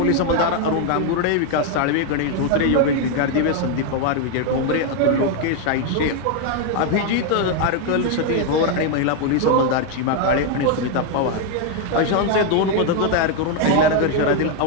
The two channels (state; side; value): different; both; correlation 0.01